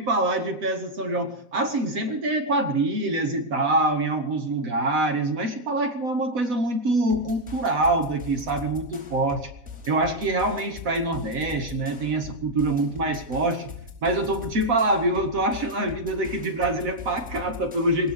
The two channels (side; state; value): left; late; 4.1 ms